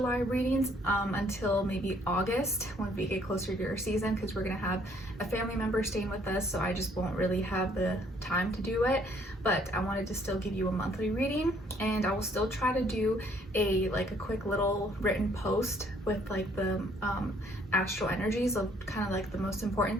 readings until maybe August when we get closer to your season, because we're going to have a family member staying with us, so I just won't really have the time to do it. But I wanted to still give you a monthly reading, and I will still try to do a quick little written post with the astral energies of kind of like the most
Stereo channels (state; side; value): normal; both; correlation 0.64